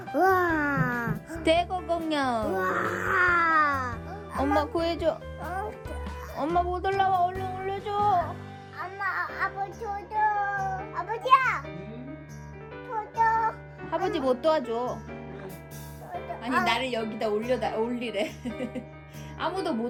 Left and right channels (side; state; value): both; identical; correlation 1.00